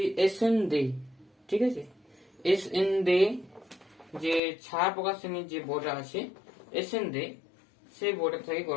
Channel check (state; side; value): drops out; right; at 4.4 s